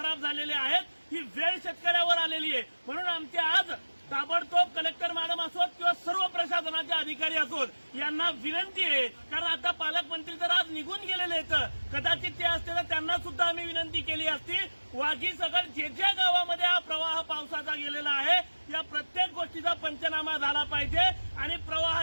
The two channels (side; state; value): both; inverted; correlation -1.00